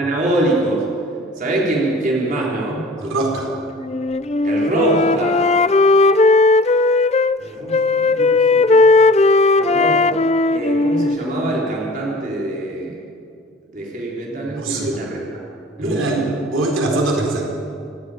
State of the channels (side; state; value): both; normal; correlation 0.43